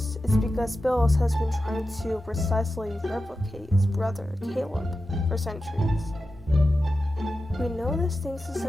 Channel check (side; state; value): both; normal; correlation 0.92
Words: is because Bills has been trying to precisely replicate his brother, Caleb, for centuries. We know this thanks to